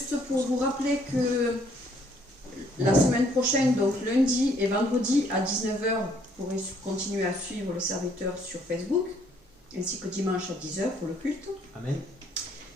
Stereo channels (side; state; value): both; normal; correlation 0.65